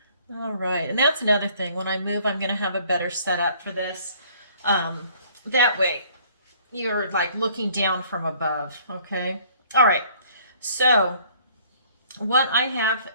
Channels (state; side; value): inverted; both; correlation -0.57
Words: All right, and that's another thing. When I move, I'm going to have a better setup for this. That way, you're like looking down from above, okay? All right, so what I have,